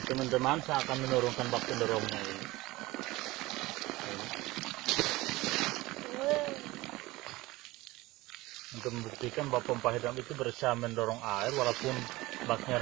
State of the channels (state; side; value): quieter; left; 19.8 dB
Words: Teman-teman, saya akan menurunkan bak pendorongnya ini. Untuk membuktikan bahwa pompa hidram itu berusaha mendorong air walaupun